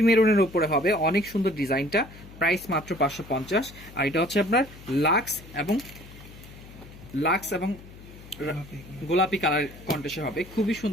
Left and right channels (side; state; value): left; noise; hum, 18 dB below the sound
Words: মেরুনের উপরে হবে, অনেক সুন্দর ডিজাইনটা, প্রাইস মাত্র 550। আর এটা হচ্ছে আপনার লাক্স এবং গোলাপি কালার কন্ট্রাস্টে হবে, খুবই